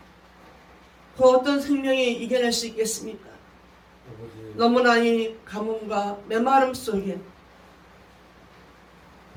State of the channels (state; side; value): identical; both; correlation 1.00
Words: 그 어떤 생명이 이겨낼 수 있겠습니까? 너무나 이 가뭄과 메마름 속에